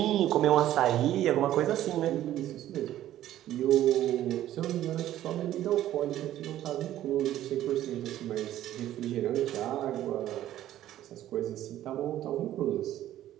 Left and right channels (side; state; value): left; quieter; 12.9 dB